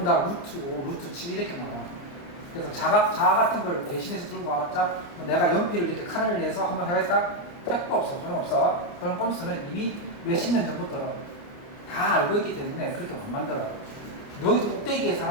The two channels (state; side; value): late; right; 29 ms